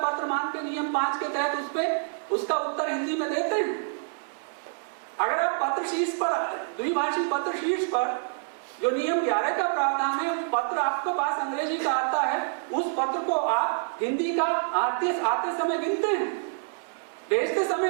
मान के नियम 5 के तहत उसका उत्तर हिंदी में देते हैं? अगर आप पत्र शीर्ष पर, द्विभाषी पत्र शीर्ष पर जो नियम 11 का प्रावधान है, पत्र आपके पास अंग्रेजी का आता है, उस पत्र को आप हिंदी का आते समय गिनते हैं? भेजते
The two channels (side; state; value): left; silent; digital silence